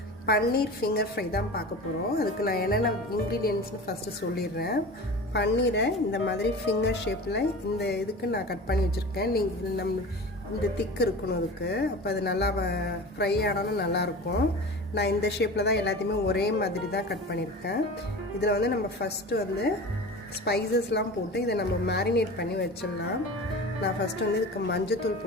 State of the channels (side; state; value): both; normal; correlation 0.34